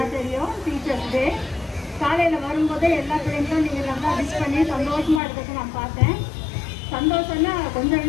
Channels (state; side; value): drops out; right; at 5.2 s